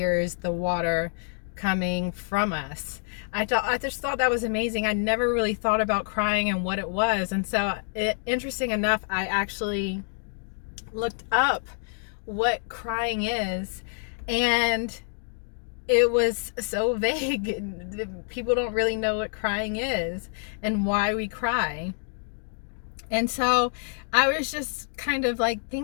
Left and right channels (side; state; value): right; silent; digital silence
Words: the water coming from us. I just thought that was amazing. I never really thought about crying and what it was. And so interesting enough, I actually looked up what crying is, and it was so vague. People don't really know what crying is and why we cry. And so I was just kind of like